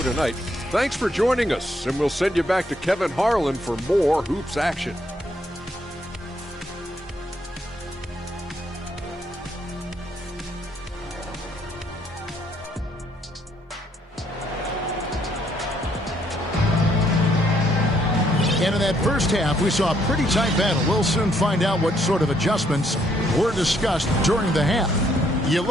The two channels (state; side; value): normal; both; correlation 0.70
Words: tonight. Thanks for joining us, and we'll send you back to Kevin Harlan for more hoops action. And in that first half, we saw a pretty tight battle. We'll soon find out what sort of adjustments were discussed during the half. You